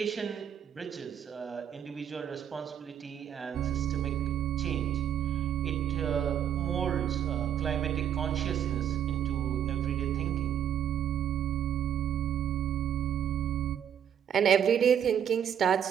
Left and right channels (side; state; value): left; quieter; 9.3 dB